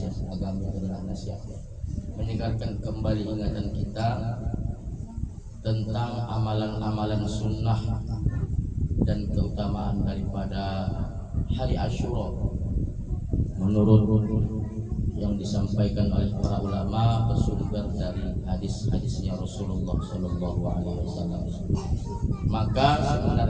agama adalah nasihat, menyegarkan kembali ingatan kita tentang amalan-amalan sunnah dan keutamaan daripada hari Asyura menurut yang disampaikan oleh para ulama bersumber dari hadis-hadisnya Rasulullah Shallallahu Alaihi Wasallam. Maka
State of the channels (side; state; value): both; identical; correlation 1.00